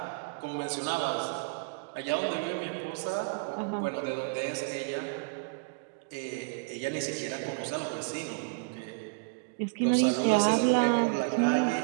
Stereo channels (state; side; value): quieter; left; 32.7 dB